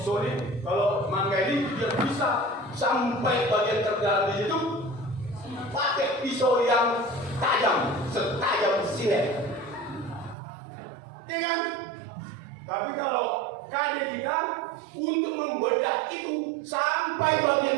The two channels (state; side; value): drops out; left; at 10.4 s